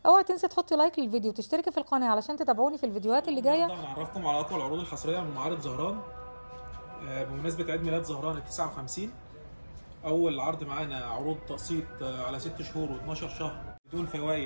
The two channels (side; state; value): both; inverted; correlation -1.00